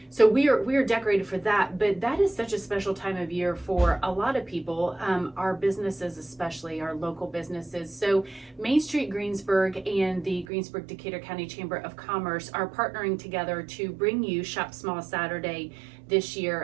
So we are decorated for that, but that is such a special time of year for a lot of people, our businesses, especially our local businesses. So Main Street Greensburg and the Greensburg Decatur County Chamber of Commerce are partnering together to bring you Shop Small Saturday this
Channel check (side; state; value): left; drops out; at 10.5 s